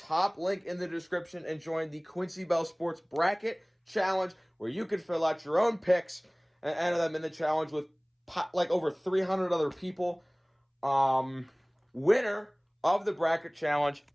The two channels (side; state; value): both; identical; correlation 1.00